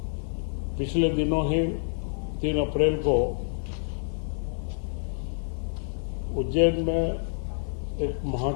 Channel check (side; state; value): right; silent; 59 dB below the other